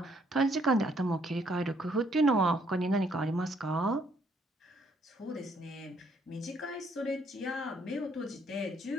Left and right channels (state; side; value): normal; both; correlation 0.68